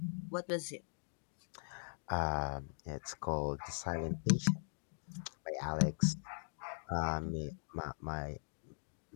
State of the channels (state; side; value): silent; right; digital silence